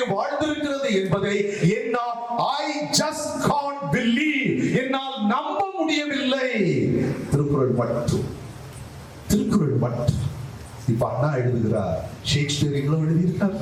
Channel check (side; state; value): both; identical; correlation 1.00